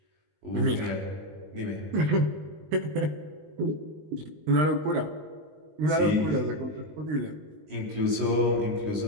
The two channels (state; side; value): late; left; 20 ms